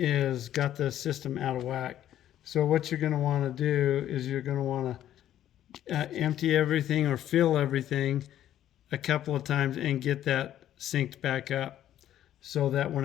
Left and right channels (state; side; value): quieter; right; 11.7 dB